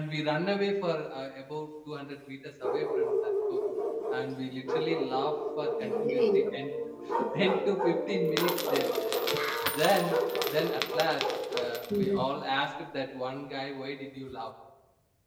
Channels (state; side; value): identical; both; correlation 1.00